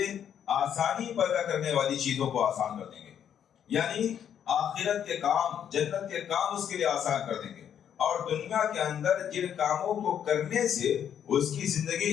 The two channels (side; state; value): right; quieter; 9.0 dB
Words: آسانی پیدا کرنے والی چیزوں کو آسان کر دیں گے، یعنی آخرت کے کام، جنت کے کام اس کے لیے آسان کر دیں گے، اور دنیا کے اندر جن کاموں کو کرنے سے اس کی